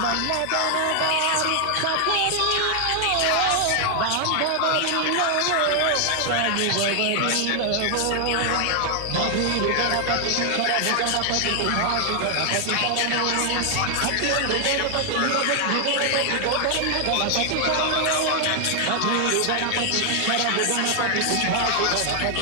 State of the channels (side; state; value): both; different; correlation 0.00